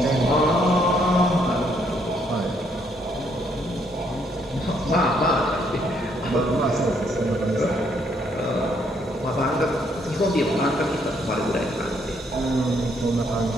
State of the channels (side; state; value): both; normal; correlation 0.70